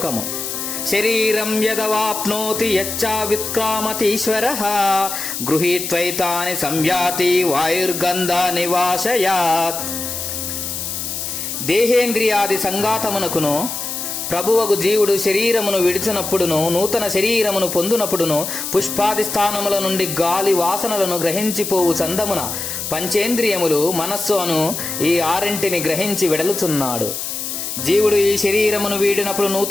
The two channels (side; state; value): left; noise; hiss, 5 dB below the sound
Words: శరీరం యదవాప్నోతి యచ్చావిత్క్రామతీశ్వరః గృహీత్వైతాని సంయాతి వాయుర్గంధ నివాసయాత్. దేహేంద్రియాది సంఘాతమునకును ప్రభువగు జీవుడు శరీరమును విడిచినప్పుడును, నూతన శరీరమును పొందునప్పుడును, పుష్పాది స్థానముల నుండి గాలి వాసనలను గ్రహించిపోవు చందమున పంచేంద్రియములు మనస్సు అను ఈ ఆరింటిని గ్రహించి వెడలుచున్నాడు. జీవుడు ఈ శరీరమును వీడినప్పుడు,